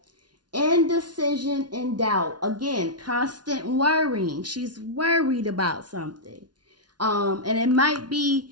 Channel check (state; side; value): late; left; 0.70 ms